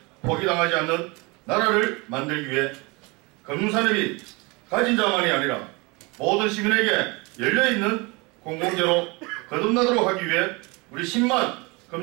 포기당하지 않는 나라를 만들기 위해 금융산업이 가진 자만이 아니라 모든 시민에게 열려있는 공공재로 거듭나도록 하기 위해 우리 10만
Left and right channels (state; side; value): quieter; left; 26.8 dB